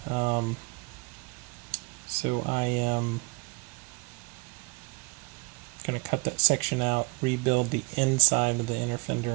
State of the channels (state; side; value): quieter; left; 28.6 dB